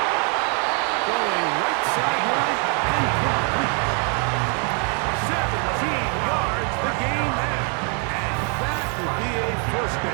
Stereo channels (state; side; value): quieter; left; 38.3 dB